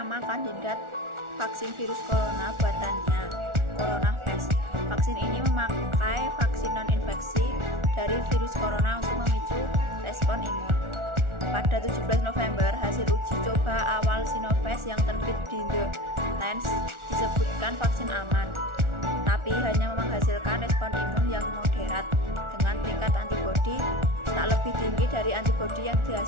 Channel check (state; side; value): late; left; 1.4 ms